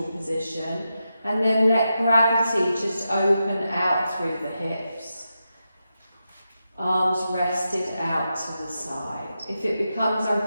position, and then let gravity just open out through the hips. Arms rested out to the side. If it becomes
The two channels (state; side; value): inverted; both; correlation -0.88